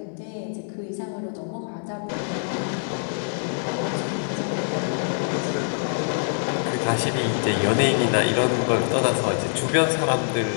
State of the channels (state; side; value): silent; right; digital silence